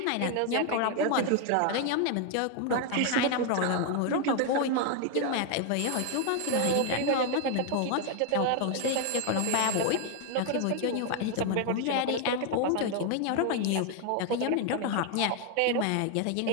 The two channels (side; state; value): both; different; correlation 0.00